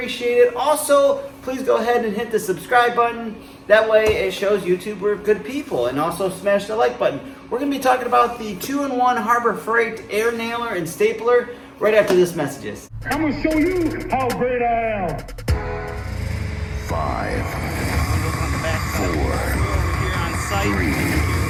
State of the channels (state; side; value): identical; both; correlation 1.00